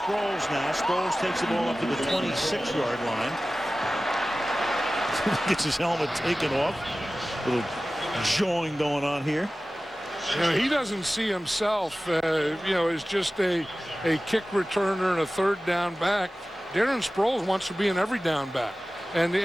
now. Sproles takes the ball up to the 26-yard line. Gets his helmet taken off. A little jawing going on here. You know, he doesn't see himself, as just a kick returner and a third down back. Darren Sproles wants to be an every down back, and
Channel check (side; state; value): both; normal; correlation 0.96